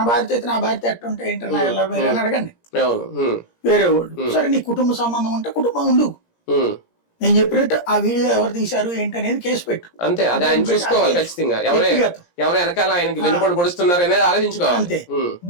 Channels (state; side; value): late; right; 17 ms